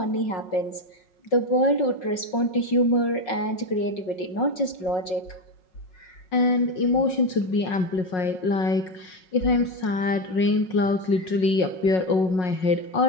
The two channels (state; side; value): late; right; 5.5 ms